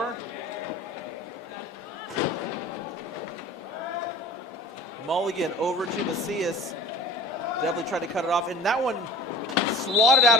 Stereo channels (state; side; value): normal; both; correlation 0.42